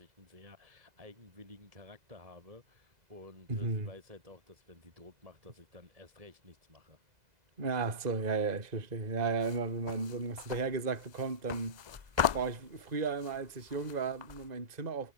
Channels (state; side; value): late; left; 2.0 ms